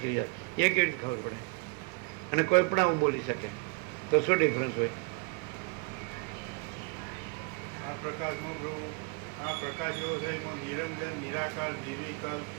રહ્યા એ કેવી રીતે ખબર પડે? અને કોઈ પણ આવું બોલી શકે તો શું ડિફરન્સ હોય? આ પ્રકાશમાં પ્રભુ, આ પ્રકાશ એવો છે એમાં નિરંજન, નિરાકાર, નિર્વિકલ્પ,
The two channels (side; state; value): left; quieter; 31.7 dB